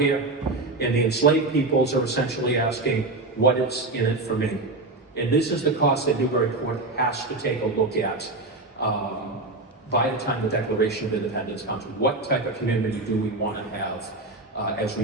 here. And the enslaved peoples are essentially asking, what is in it for me? And this is the cost that Newburyport has to take a look at by the time the Declaration of Independence comes. What type of community do we want to have as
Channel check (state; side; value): quieter; left; 3.1 dB